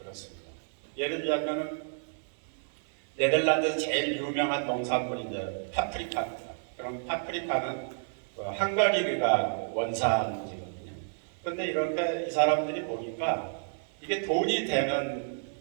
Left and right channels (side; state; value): left; silent; 57 dB below the other